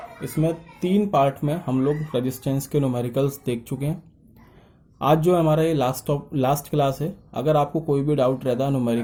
इसमें 3 पार्ट में हम लोग रेजिस्टेंस के न्यूमेरिकल्स देख चुके हैं। आज जो हमारा ये लास्ट क्लास है, अगर आपको कोई भी डाउट रहता है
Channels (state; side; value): identical; both; correlation 1.00